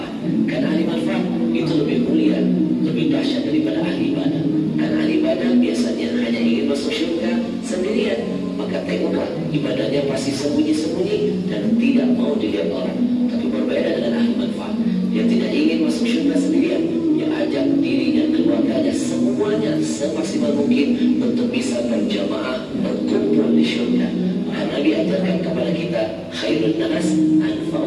Karena ahli manfaat itu lebih mulia, lebih dahsyat daripada ahli ibadah. Karena ahli ibadah biasanya hanya ingin masuk surga sendirian. Maka tengoklah ibadahnya pasti sembunyi-sembunyi dan tidak mau dilihat orang. Tapi berbeda dengan ahli manfaat, dia tidak ingin masuk surga sendirian. Dia ajak diri dan keluarganya semuanya semaksimal mungkin untuk bisa berjamaah berkumpul di surga. Karena Nabi ajarkan kepada kita khairun nas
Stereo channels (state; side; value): identical; both; correlation 1.00